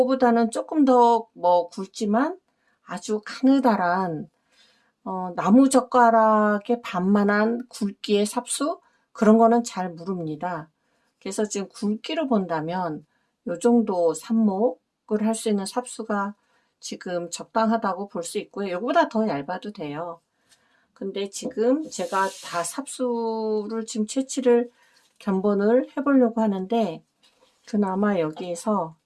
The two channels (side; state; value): both; identical; correlation 1.00